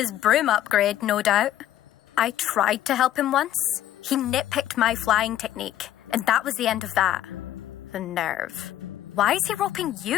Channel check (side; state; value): right; quieter; 12.5 dB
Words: broom upgrade, no doubt. I tried to help him once. He nitpicked my flying technique, and that was the end of that. The nerve. Why is he roping